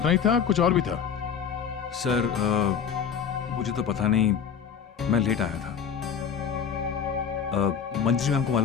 ही था, कुछ और भी था? सर मुझे तो पता नहीं, मैं लेट आया था। मंजरी मैम को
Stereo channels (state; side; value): quieter; right; 7.4 dB